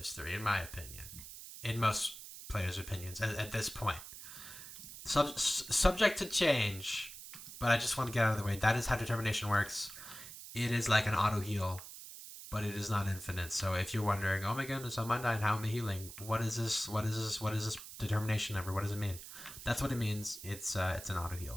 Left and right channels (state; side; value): noise; right; hiss, 13 dB below the sound